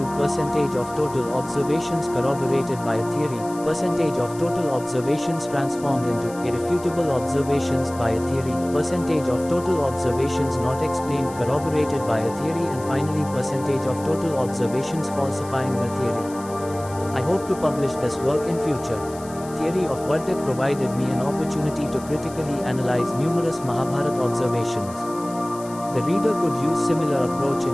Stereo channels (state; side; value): noise; left; hiss, 19 dB below the sound